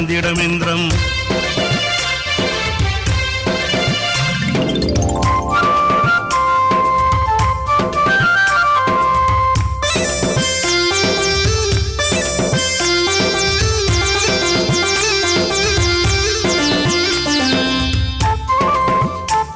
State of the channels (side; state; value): both; identical; correlation 1.00